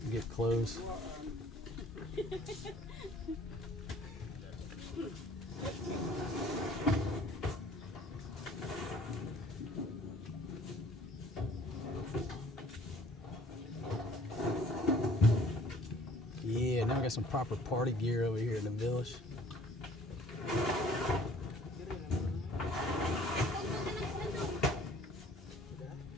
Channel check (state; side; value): normal; both; correlation 0.55